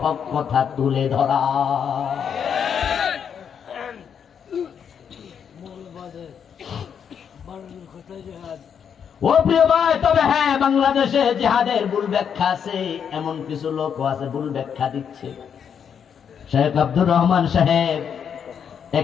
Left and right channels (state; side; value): quieter; right; 7.6 dB